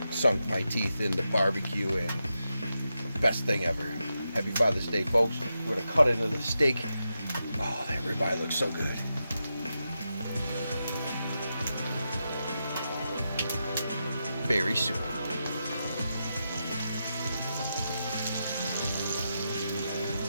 sunk my teeth into barbecue, and best thing ever. Happy Father's Day, folks. We're gonna cut into the steak. Oh, that ribeye looks so good. Very soon.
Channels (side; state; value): both; inverted; correlation -0.87